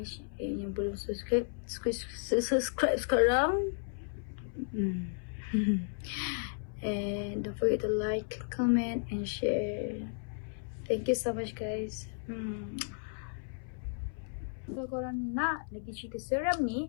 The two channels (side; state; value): right; silent; 55 dB below the other